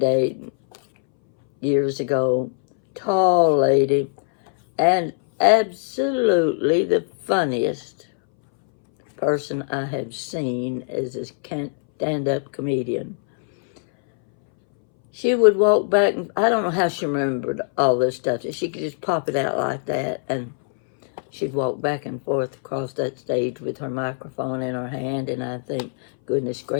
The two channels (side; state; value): right; silent; 62 dB below the other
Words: years ago. Tall lady, and absolutely the funniest person I have seen as a stand-up comedian. She would walk back, and I don't know how she remembered all this stuff. She could just pop it out like that, and she'd walk back and forth across that stage with her microphone in her hand, and I think, goodness